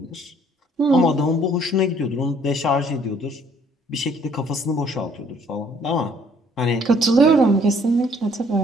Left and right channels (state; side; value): normal; both; correlation 0.61